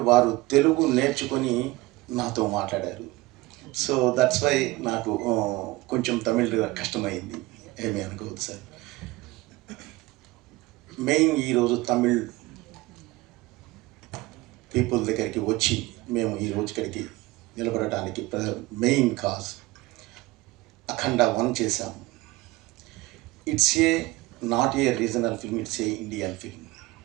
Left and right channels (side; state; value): left; quieter; 20.7 dB